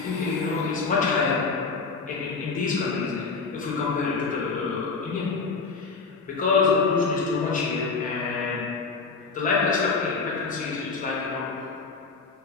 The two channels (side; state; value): right; quieter; 4.5 dB